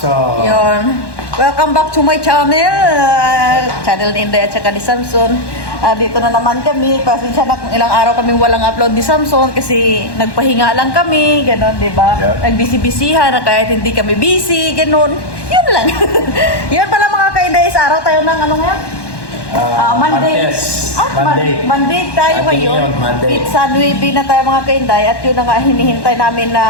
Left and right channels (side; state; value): right; late; 1.1 ms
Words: Yun. Welcome back to my channel. Channel ni Inday at saka ni Samson. Dito na naman kami. Pasensya na kung ilang araw kami walang upload ni Samson kasi nagpahinga lang kami. Ganon, di ba? Yep. Nagbisi-bisihan na kahit hindi kami busy. Ganon. Yun lang. Yun pala mga ka-Inday. Sa araw tayo ng ano ngayon? Monday. Monday tayo ngayon. Monday. Pizza 9 na tayo mga ka-Inday. At yun na nga hinihintay namin